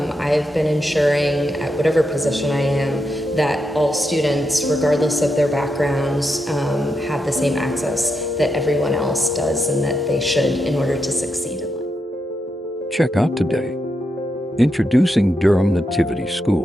I've been ensuring at whatever position I am that all students, regardless of their backgrounds, have the same access that everyone else does and that they should in order to succeed in life. Check out today, Introducing Durham Nativity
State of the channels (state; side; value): normal; both; correlation 0.84